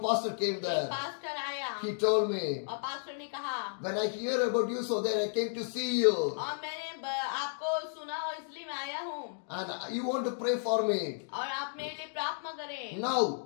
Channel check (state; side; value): silent; right; digital silence